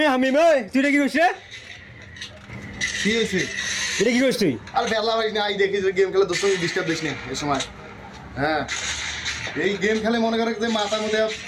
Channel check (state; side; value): identical; both; correlation 1.00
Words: ওই তুই এটা কি করছিস রে? কি হয়েছে? এটা কি করছিস তুই? আর বেলা ভাই না আই দেখি যে গেম খেলে দোস্ত ডিস্টার্ব দিস না এই সময়। হ্যাঁ এই গেম খেলে মনে করে যে মাথার মধ্যে